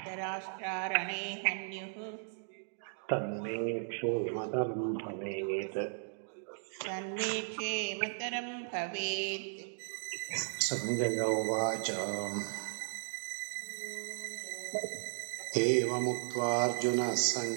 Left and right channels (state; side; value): silent; left; digital silence